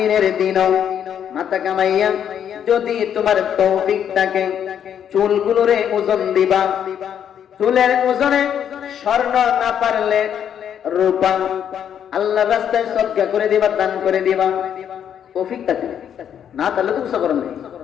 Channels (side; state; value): right; quieter; 9.0 dB